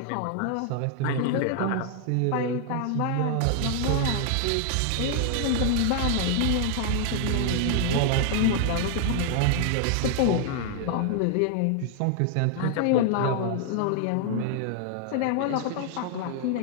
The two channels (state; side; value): different; both; correlation 0.00